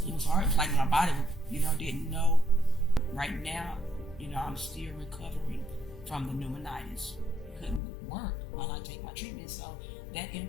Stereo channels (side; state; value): right; drops out; at 7.8 s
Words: like my body, didn't know. Right now, I'm still recovering from the pneumonitis. It couldn't work while I take my treatment. So that